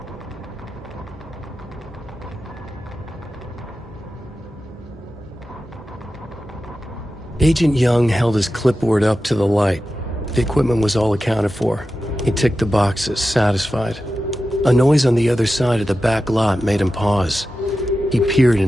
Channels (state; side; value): normal; both; correlation 0.92